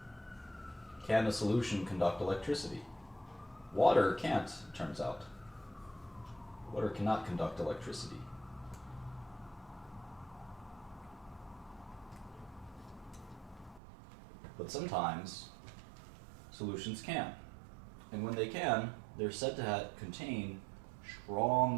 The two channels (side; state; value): left; drops out; at 13.8 s